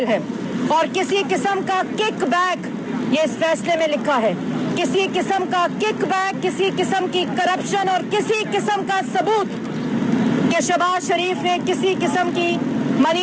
है। और किसी किस्म का किक बैक, ये इस फैसले में लिखा है, किसी किस्म का किक बैक, किसी किस्म की करप्शन और किसी किस्म का सबूत कि शहबाज शरीफ ने किसी किस्म की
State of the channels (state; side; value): identical; both; correlation 1.00